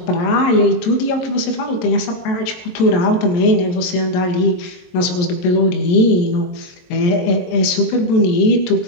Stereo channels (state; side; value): late; right; 22 ms